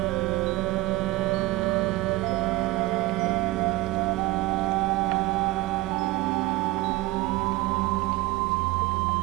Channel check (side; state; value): left; quieter; 18.8 dB